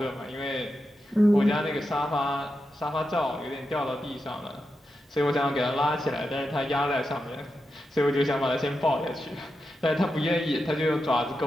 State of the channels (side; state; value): both; normal; correlation 0.88